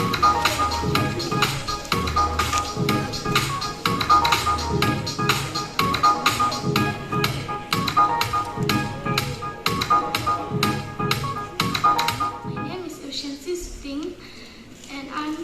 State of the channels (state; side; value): identical; both; correlation 1.00